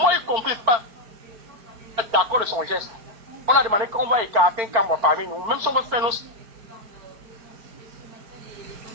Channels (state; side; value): late; left; 4.5 ms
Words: y compris pas d'accord de son geste. On a demandé qu'on va écarter un cambre parmi nous, même si on veut faire nos...